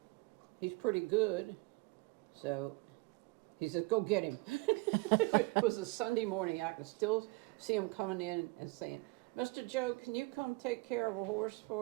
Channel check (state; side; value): quieter; left; 25.0 dB